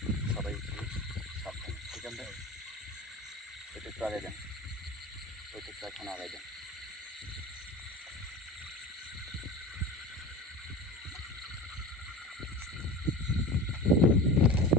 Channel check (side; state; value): both; normal; correlation 0.33